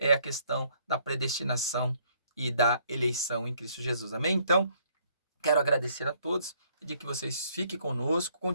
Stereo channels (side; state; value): both; inverted; correlation -0.65